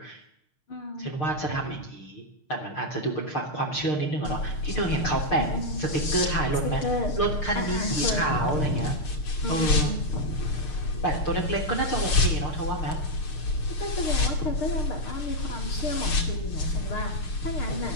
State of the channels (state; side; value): late; right; 6.6 ms